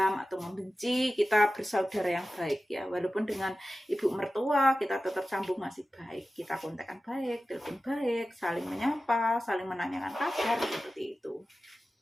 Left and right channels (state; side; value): normal; both; correlation 0.95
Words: atau membenci, kita bersaudara yang baik ya. Walaupun dengan ibu mertua kita tetap sambung masih baik, kita kontakkan baik, telepon baik, saling menyapa, saling menanyakan kabar, seperti itu.